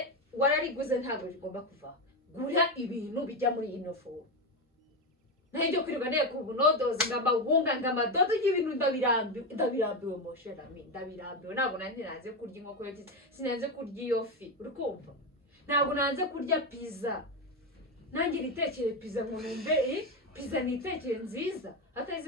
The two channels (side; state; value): both; normal; correlation 0.13